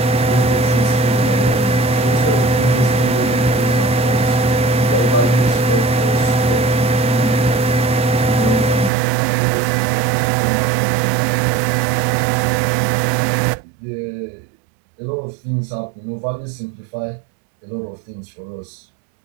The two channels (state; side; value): drops out; left; at 8.9 s